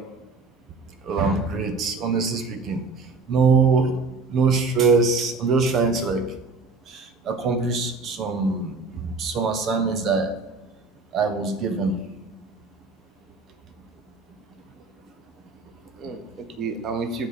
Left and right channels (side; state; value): left; quieter; 4.0 dB